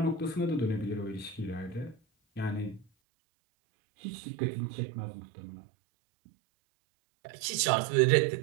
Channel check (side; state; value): left; drops out; at 2.9 s